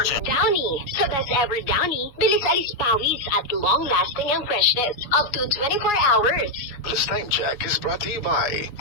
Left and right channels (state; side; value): late; right; 7.2 ms